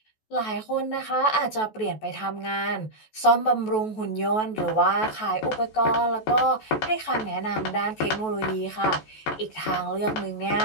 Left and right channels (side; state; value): right; late; 14 ms